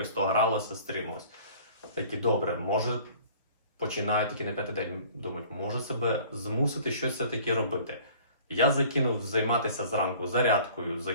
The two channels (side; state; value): both; inverted; correlation -0.49